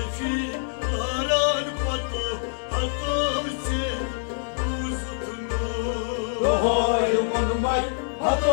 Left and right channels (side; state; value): right; silent; digital silence